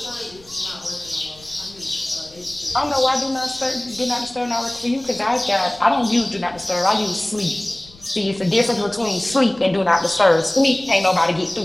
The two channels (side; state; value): left; noise; rumble, 24 dB below the sound